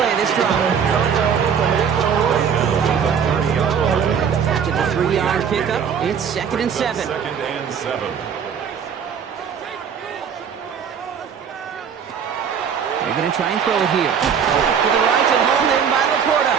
of this drive. After the 3-yard pickup, it's 2nd and 7. 2nd and 7. They're going to try and throw it here. To the right and hauled in by Laporta.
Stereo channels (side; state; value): left; quieter; 7.3 dB